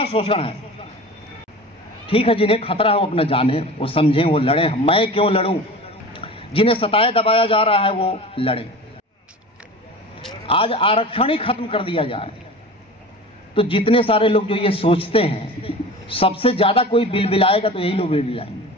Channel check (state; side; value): normal; both; correlation 0.35